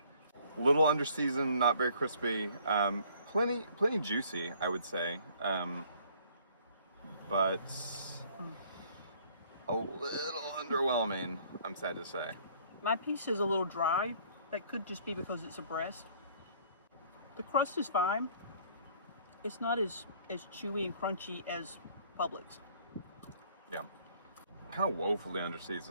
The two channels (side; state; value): both; inverted; correlation -0.58